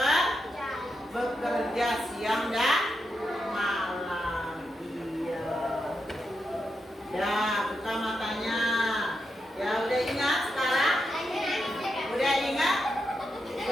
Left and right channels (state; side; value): normal; both; correlation 0.85